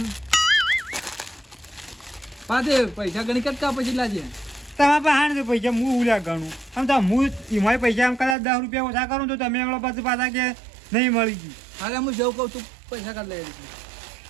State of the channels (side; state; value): left; drops out; at 8.3 s